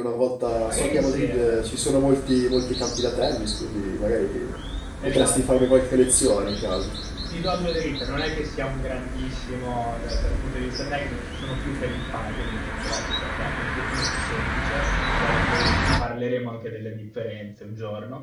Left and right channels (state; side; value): identical; both; correlation 1.00